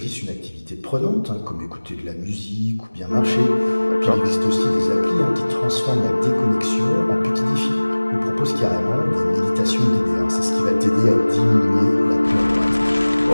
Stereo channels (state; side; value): inverted; both; correlation -1.00